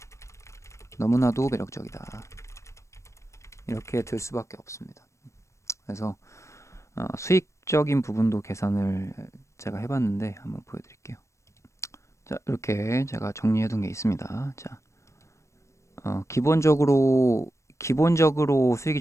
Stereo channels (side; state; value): right; late; 0.14 ms